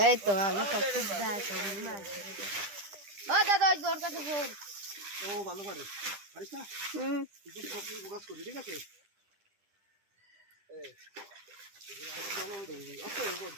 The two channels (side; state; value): left; late; 10 ms